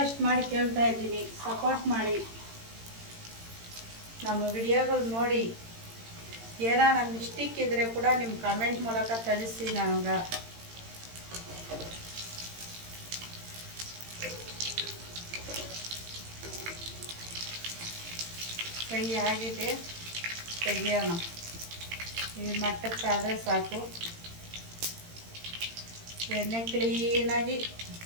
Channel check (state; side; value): late; left; 18 ms